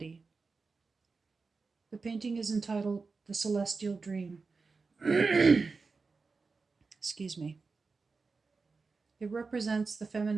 The painting is entitled The Celestial Dream. Excuse me. It represents the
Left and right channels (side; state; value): left; quieter; 4.3 dB